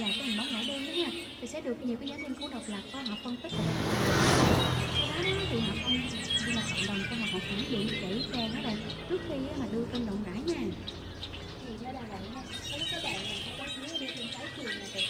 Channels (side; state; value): both; identical; correlation 1.00